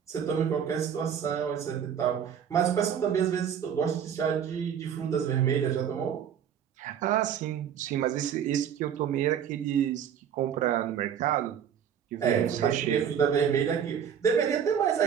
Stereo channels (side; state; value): left; quieter; 8.4 dB